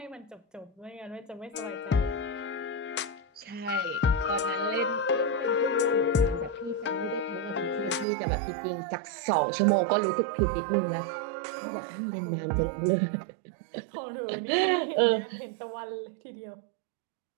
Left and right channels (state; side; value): drops out; left; at 8.1 s